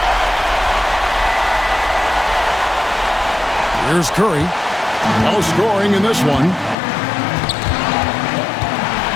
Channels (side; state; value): right; drops out; at 6.8 s